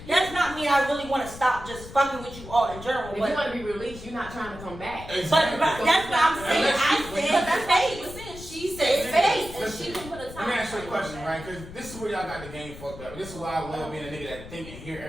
That's not mean I really want to stop just fucking with you all in general. If But, you want to be released, you're not trying to come back. but that's what I'm saying. I said That's what she space. was saying. She said space, and she can put a Let time me ask you a frame question, on right? Because this is where y'all got the game fucked up. This is why I love being a nigga that think and hear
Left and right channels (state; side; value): noise; left; rumble, 14 dB below the sound